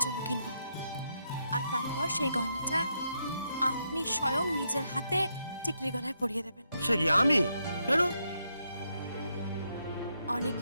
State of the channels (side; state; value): both; inverted; correlation -0.80